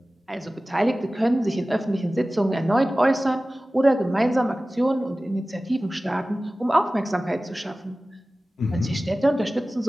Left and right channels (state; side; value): normal; both; correlation 0.97